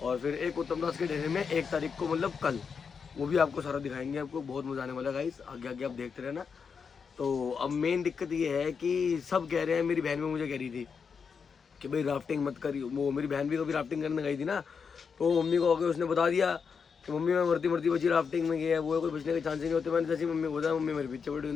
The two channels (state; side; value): quieter; right; 6.0 dB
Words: और फिर एक उत्तम दास के डेरे में 1 तारीख को, मतलब कल, वो भी आपको सारा दिखाएंगे। आपको बहुत मज़ा आने वाला है गाइस, आगे आगे आप देखते रहना। तो अब मेन दिक्कत ये है कि सब कह रहे हैं, मेरी बहन भी मुझे कह रही थी कि भाई राफ्टिंग मत करियो। वो मेरी बहन भी कभी राफ्टिंग करने गई थी ना, तो मम्मी को आके उसने बता दिया कि मम्मी मैं मरती मरती बची राफ्टिंग में गया है, वो कोई बचने के चांस ही नहीं होते। मैंने जैसी मम्मी को बताया, मम्मी मेरे पीछे पड़ी,